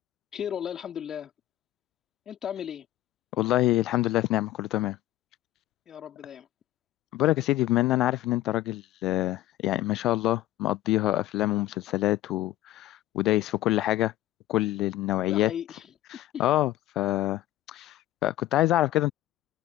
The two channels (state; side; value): quieter; right; 14.9 dB